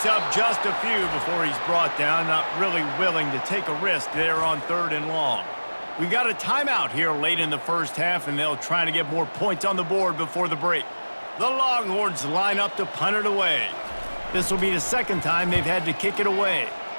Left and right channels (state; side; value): inverted; both; correlation -1.00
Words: up just a few before he's brought down, not really willing to take a risk there on 3rd and long. We got a timeout here late in the first half, and they'll try to get more points on the board before the break. The Longhorns line up to punt it away. This will be the 2nd time they've had to kick it away.